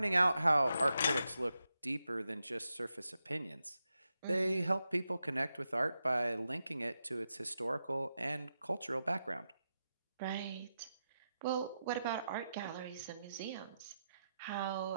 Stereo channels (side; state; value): both; inverted; correlation -0.87